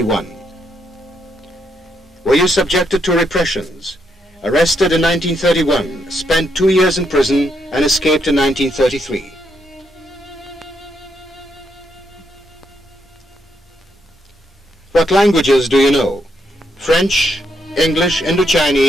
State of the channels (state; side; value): normal; both; correlation 0.77